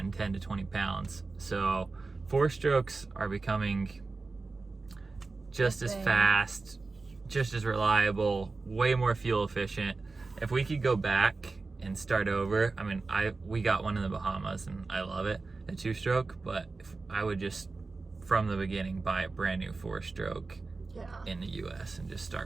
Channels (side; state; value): left; quieter; 3.8 dB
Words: 10 to 20 pounds. So 4-strokes are becoming just as fast, just as reliable, way more fuel efficient. If we could go back and start over, I mean, we got one in the Bahamas and I love it, a 2-stroke, but if I would just from the beginning buy a brand new 4-stroke in the US and just